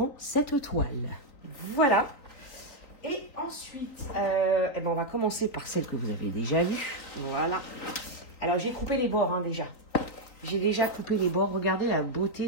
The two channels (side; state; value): right; late; 3.9 ms